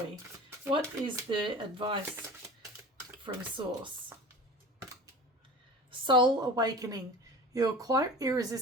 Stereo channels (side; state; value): both; normal; correlation 0.37